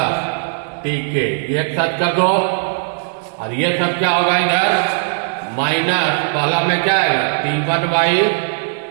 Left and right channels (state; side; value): silent; left; 68 dB below the other